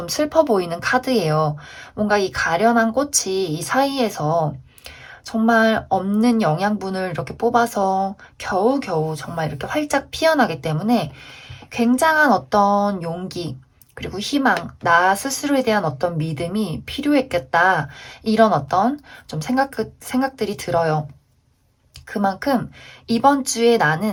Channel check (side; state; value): both; identical; correlation 1.00